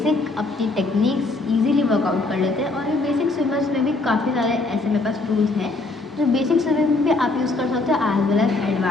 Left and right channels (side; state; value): right; quieter; 3.2 dB